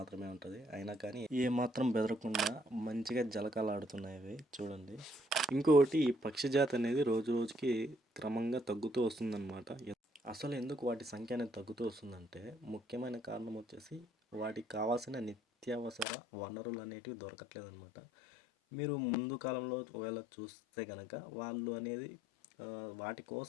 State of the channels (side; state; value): right; drops out; at 16.1 s